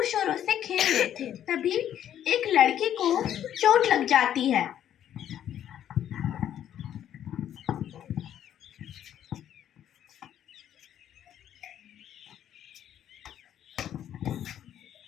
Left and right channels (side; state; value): right; quieter; 10.5 dB